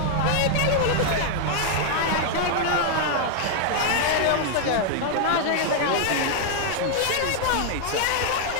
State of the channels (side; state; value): both; different; correlation 0.00